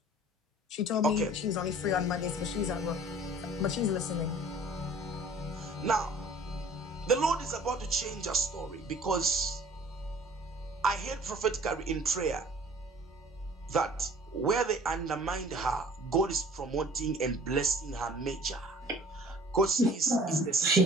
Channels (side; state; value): both; normal; correlation 0.49